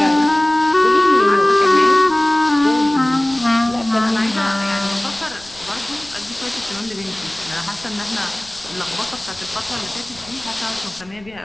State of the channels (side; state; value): left; noise; rumble, 24 dB below the sound